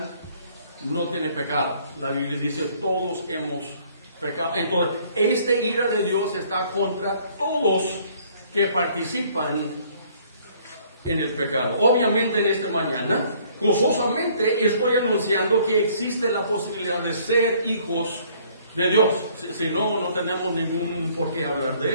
no tiene pecado. La Biblia dice, todos hemos pecado. Entonces, esta ira de Dios está contra todos que participan en el pecado. Obviamente en esta mañana, gozosamente estoy anunciando que existe la posibilidad de ser hijos de Dios. Si no, no tenemos ningún por qué hablar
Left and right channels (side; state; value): both; inverted; correlation -0.60